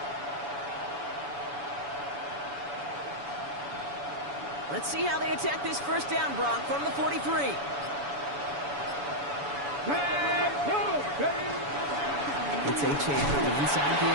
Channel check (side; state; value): left; late; 7.0 ms